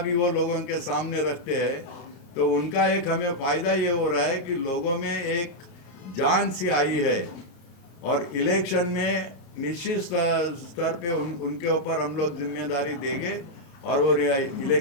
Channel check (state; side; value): late; right; 32 ms